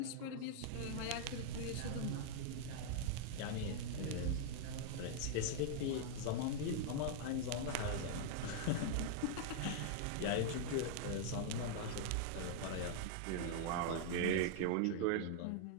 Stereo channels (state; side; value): different; both; correlation -0.01